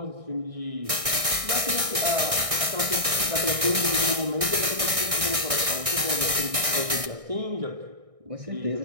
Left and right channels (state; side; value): late; left; 1.6 ms